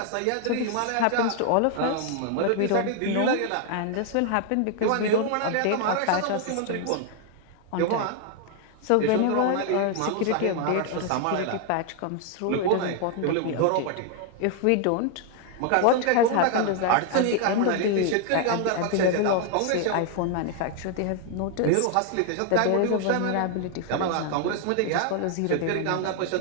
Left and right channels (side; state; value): both; different; correlation 0.00